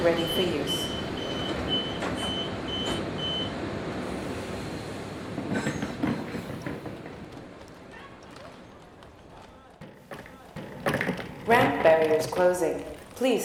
ready for use. Ramp barriers closing.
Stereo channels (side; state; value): both; identical; correlation 1.00